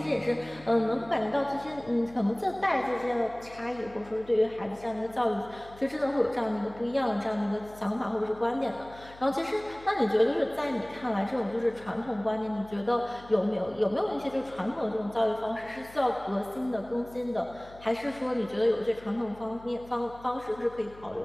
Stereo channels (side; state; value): left; noise; hum, 21 dB below the sound